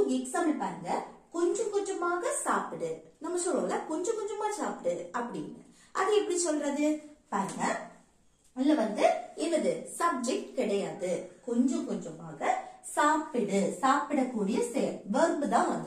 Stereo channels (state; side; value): identical; both; correlation 1.00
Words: எக்ஸாம்பிள் பாருங்க, கொஞ்சம் கொஞ்சமாக சாப்பிடு. நம்ம சொல்லுவோம்ல கொஞ்சம் கொஞ்சமா சாப்பிடு அப்படின்னு. அது எப்படி சொல்றது பாருங்க. இல்ல என்னது சப்ஜெக்ட் கிடையாது, கொஞ்சம் கொஞ்சமாக சாப்பிடு, சாப்பிடக்கூடிய வெர்ப் தான்